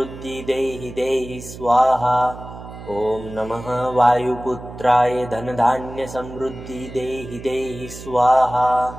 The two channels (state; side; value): noise; right; hum, 14 dB below the sound